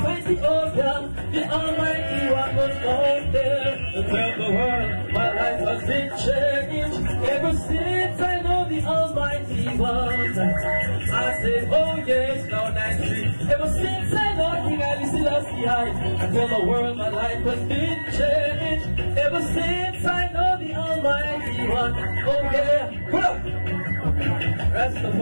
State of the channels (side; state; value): both; inverted; correlation -1.00